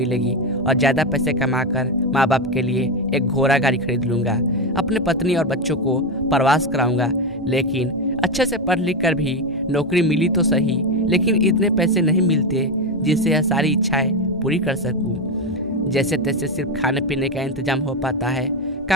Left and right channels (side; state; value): both; normal; correlation 0.11